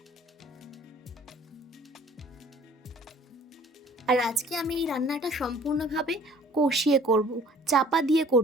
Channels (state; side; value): normal; both; correlation 0.53